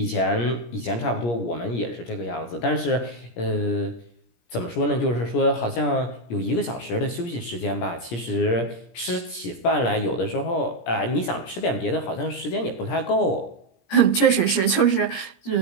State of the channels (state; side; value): late; right; 17 ms